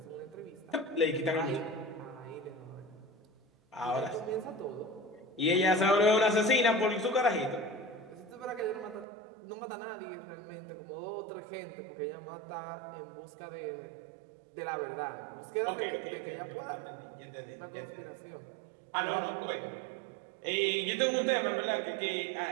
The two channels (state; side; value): drops out; left; at 9.1 s